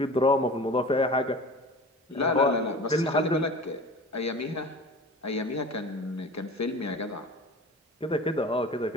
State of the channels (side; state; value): both; normal; correlation 0.38